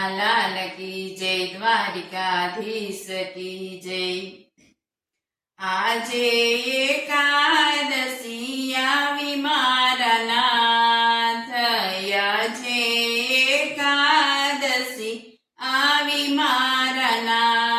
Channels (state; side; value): identical; both; correlation 1.00